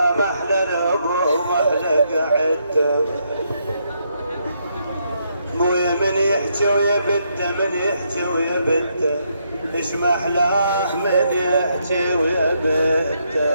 محلى الابو محلى قعدته مويا من يحكي ويا بده من يحكي ويا بده ايش محلاه من يحكي ويا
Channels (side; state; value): both; inverted; correlation -0.76